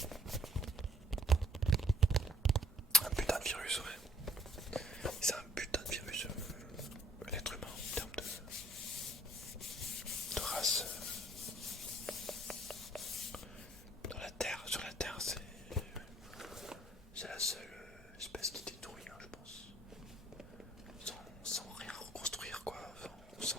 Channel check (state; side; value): normal; both; correlation 0.62